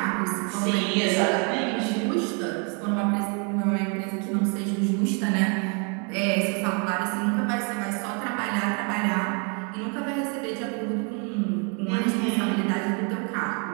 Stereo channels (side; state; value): left; quieter; 36.5 dB